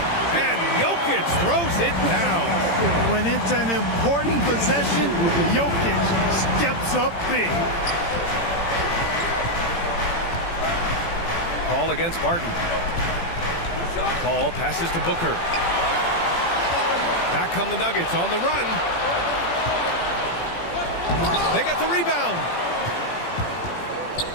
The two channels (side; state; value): right; late; 18 ms